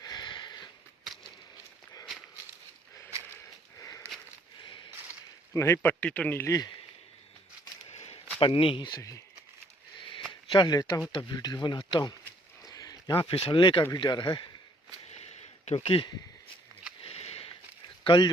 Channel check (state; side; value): normal; both; correlation 0.65